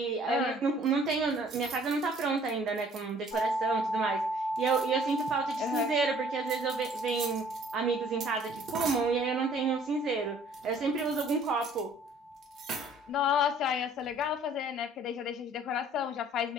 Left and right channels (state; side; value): normal; both; correlation 0.56